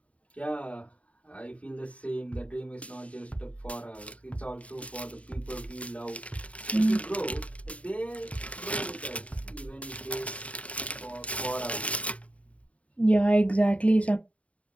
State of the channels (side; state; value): right; late; 0.066 ms